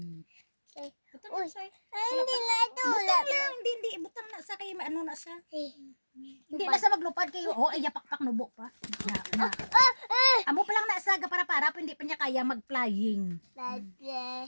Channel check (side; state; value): both; inverted; correlation -1.00